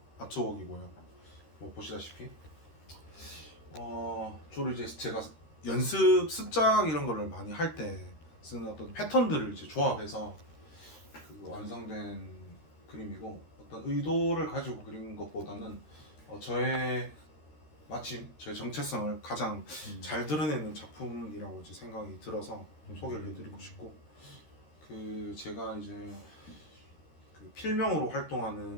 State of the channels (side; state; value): right; late; 13 ms